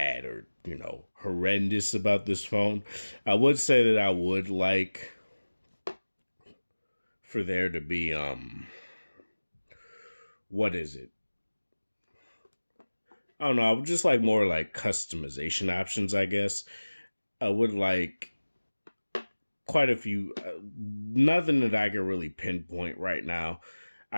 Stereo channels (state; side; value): inverted; both; correlation -1.00